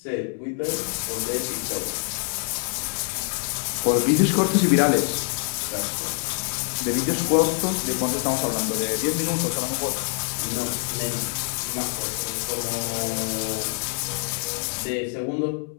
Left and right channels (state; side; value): silent; right; 62 dB below the other